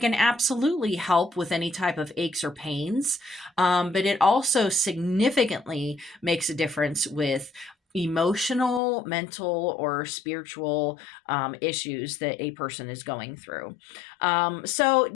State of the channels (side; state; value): right; drops out; at 8.8 s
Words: absolutely help with any type of aches or pains. But it also significantly makes a difference with emotional, mental, or spiritual issues that a person is going through. So